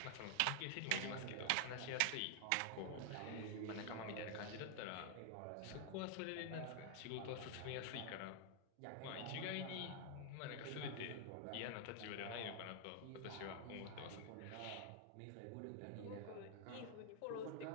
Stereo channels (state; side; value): different; both; correlation 0.00